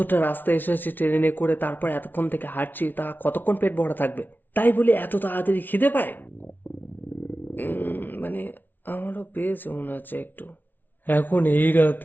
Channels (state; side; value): late; right; 0.088 ms